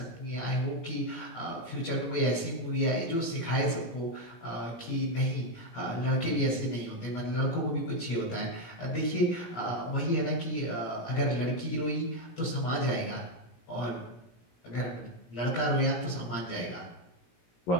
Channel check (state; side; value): late; right; 17 ms